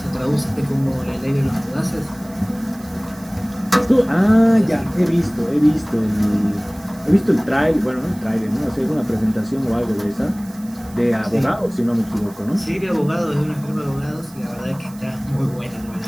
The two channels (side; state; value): right; noise; hiss, 23 dB below the sound